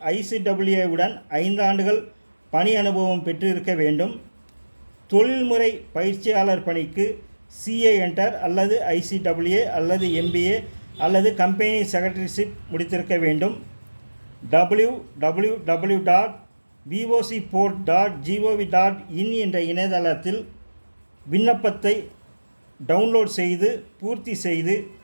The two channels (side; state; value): both; inverted; correlation -1.00